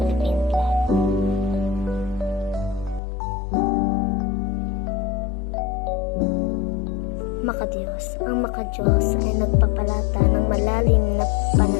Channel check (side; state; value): right; drops out; at 3.0 s